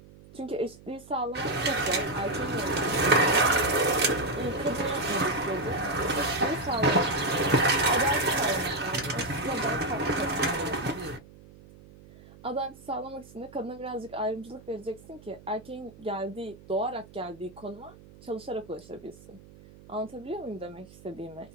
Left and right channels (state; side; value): noise; right; hum, 21 dB below the sound